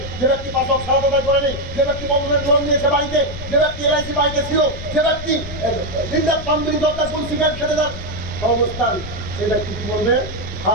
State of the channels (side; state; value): left; noise; rumble, 11 dB below the sound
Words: যে ব্যক্তি পাঁচ ওয়াক্ত সালাত আদায় করেনি, যে ব্যক্তি বন্ধনের লোন নিয়েছে বাড়িতে, যে ব্যক্তি এলআইসি বাড়িতে ছিল, যে ব্যক্তি দিনরাত পাম্পিং দরকার ফুল সিগারেট খেতে যান অবস্থান, সেই ব্যক্তি কি বলবে? হা